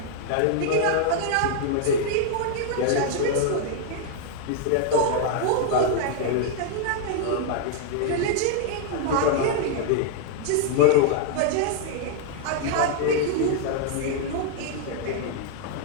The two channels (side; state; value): both; different; correlation -0.01